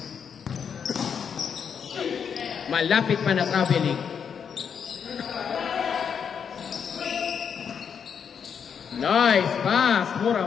Malapit pa na traveling. Nice pass.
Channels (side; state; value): right; quieter; 7.2 dB